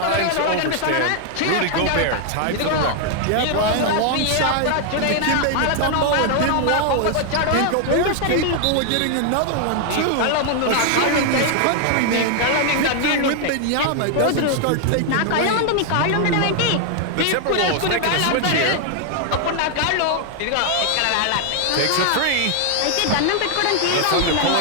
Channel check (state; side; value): different; both; correlation 0.00